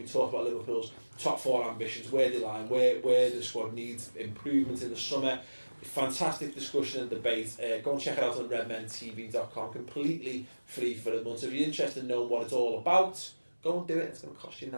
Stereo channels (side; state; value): both; inverted; correlation -1.00